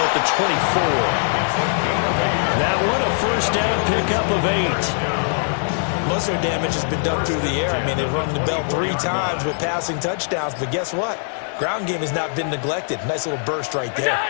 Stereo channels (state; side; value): silent; right; digital silence